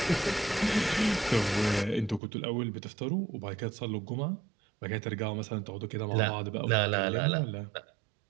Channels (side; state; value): left; drops out; at 2.2 s